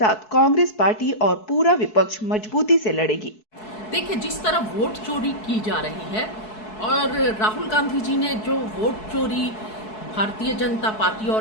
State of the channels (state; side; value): late; right; 4.7 ms